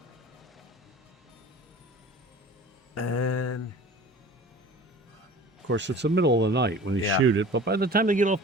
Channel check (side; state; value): both; normal; correlation 0.42